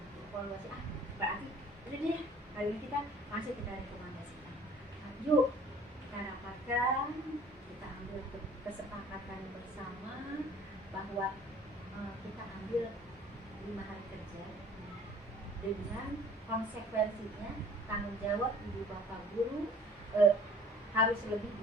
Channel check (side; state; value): both; normal; correlation 0.51